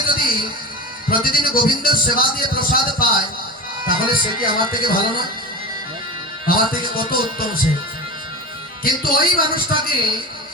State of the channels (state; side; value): normal; both; correlation 0.26